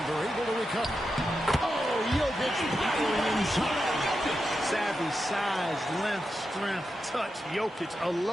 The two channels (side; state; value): both; normal; correlation 0.88